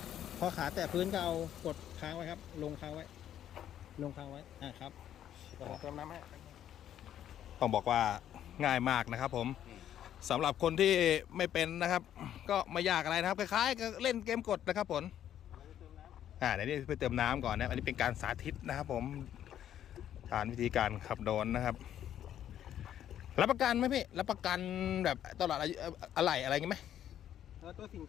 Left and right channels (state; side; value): quieter; right; 10.7 dB